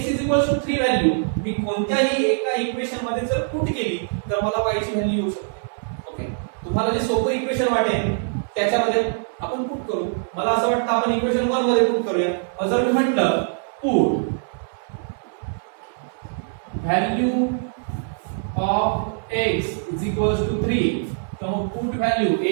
= 3 व्हॅल्यू मी कोणत्याही एका इक्वेशन मध्ये जर पुट केली तर मला y ची व्हॅल्यू येऊ शकते, ओके. तुम्हाला जे सोपं इक्वेशन वाटेल त्याच्यामध्ये आपण पुट करू. मला असं वाटतं आपण इक्वेशन 1 मध्ये पुट करूया. जर मी म्हटलं पुट व्हॅल्यू ऑफ x = 3, तर मग पुट व्हॅल्यू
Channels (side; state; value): left; silent; digital silence